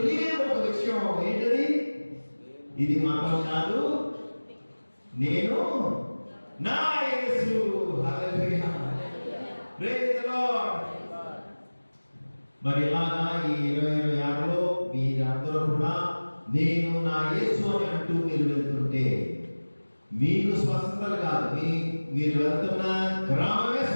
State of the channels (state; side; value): inverted; both; correlation -1.00